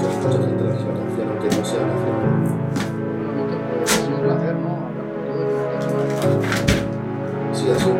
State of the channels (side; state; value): both; identical; correlation 1.00